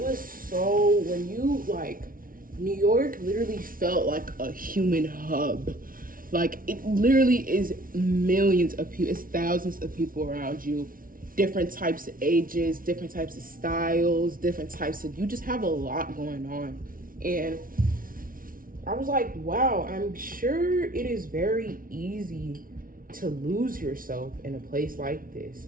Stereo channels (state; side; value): late; left; 0.41 ms